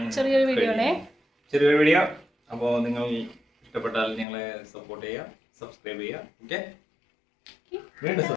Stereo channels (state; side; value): drops out; right; at 4.2 s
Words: വീഡിയോ ആണേ. ചെറിയൊരു വീഡിയോ. അപ്പോൾ നിങ്ങൾ ഇഷ്ടപ്പെട്ടാൽ ഞങ്ങളെ സപ്പോർട്ട് ചെയ്യുക, സബ്സ്ക്രൈബ് ചെയ്യുക. ഓക്കെ,